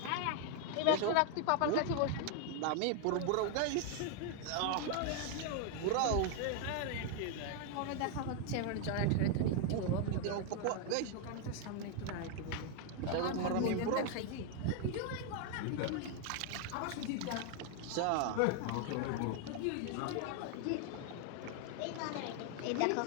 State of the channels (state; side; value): different; both; correlation 0.00